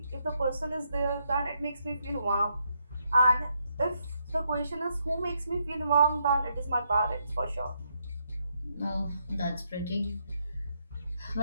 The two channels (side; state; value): both; inverted; correlation -0.77